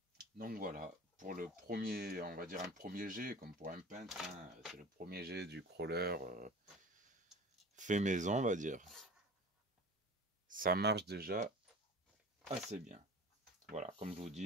Donc voilà, pour le premier, on va dire un premier jet, comme pour un peintre, hein, c'est le premier jet du crawler fait maison, on va dire. Ça marche déjà assez bien. Voilà, comme je vous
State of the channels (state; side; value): normal; both; correlation 0.38